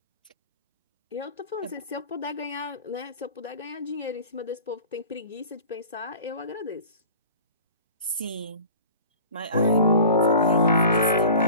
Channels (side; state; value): both; inverted; correlation -0.42